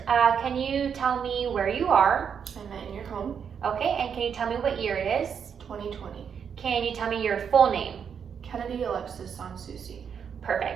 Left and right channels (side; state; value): left; quieter; 7.3 dB